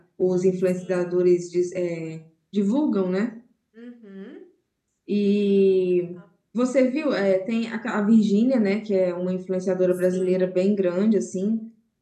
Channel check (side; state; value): both; identical; correlation 1.00